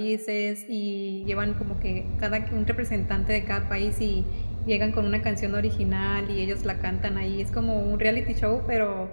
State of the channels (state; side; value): inverted; both; correlation -1.00